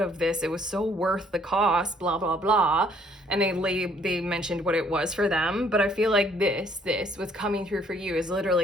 this. It was so worth the cost, blah, blah, blah. And they mentioned what it was for them. But I feel like this, what's coming through for you is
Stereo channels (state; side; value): normal; both; correlation 0.63